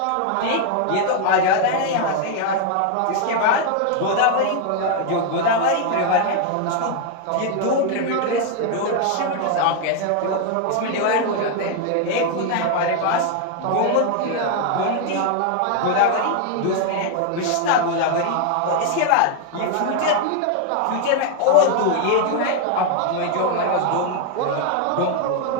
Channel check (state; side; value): different; both; correlation 0.00